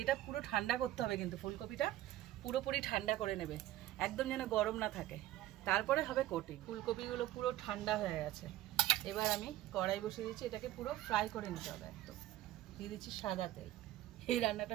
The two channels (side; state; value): left; quieter; 14.8 dB